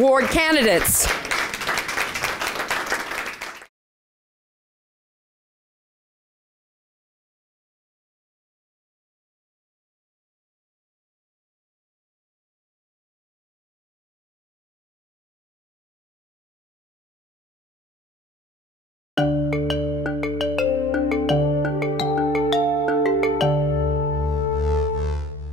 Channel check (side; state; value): both; normal; correlation 0.69